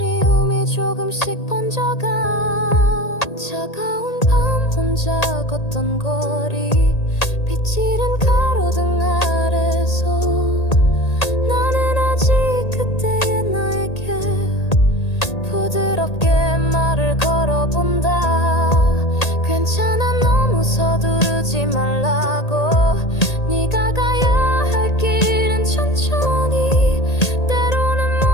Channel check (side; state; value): right; late; 1.8 ms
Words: 조금씩 번져가. 차가운 밤 혼자 걷던 거리. 빛이른 가로등 아래서 나는 아직 그때의 나에게 부드럽게 말을 걸어본다. 괜찮아 너무 서두르지 말라고. 네가 가야 할 길은 천천히. 때로는